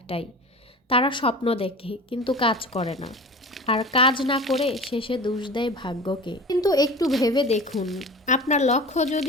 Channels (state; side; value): normal; both; correlation 0.35